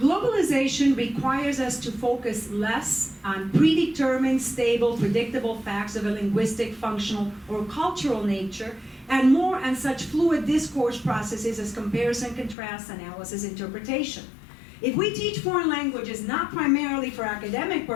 requires us to focus less on predetermined, stable, predictable facts of a linguistic, functional, or cultural nature, and more on such fluid discourse processes as comparison, contrast, analysis, interpretation. If we teach foreign languages not primarily for academic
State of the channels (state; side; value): drops out; right; at 12.6 s